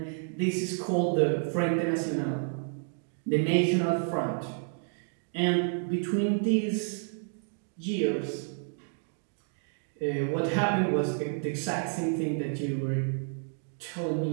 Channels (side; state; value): left; silent; 58 dB below the other